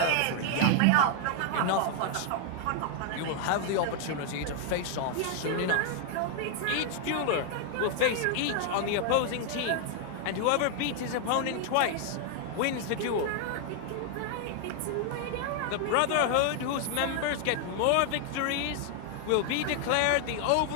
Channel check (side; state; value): both; different; correlation 0.00